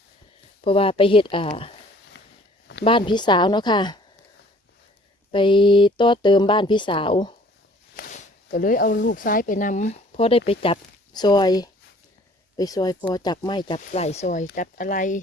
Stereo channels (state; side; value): normal; both; correlation 0.55